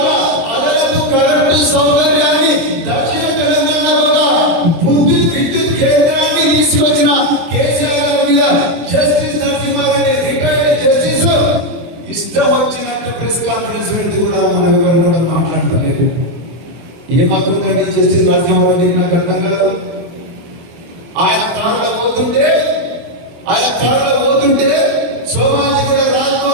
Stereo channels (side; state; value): left; late; 23 ms